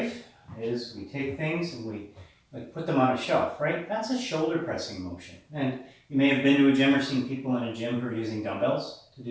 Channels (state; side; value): identical; both; correlation 1.00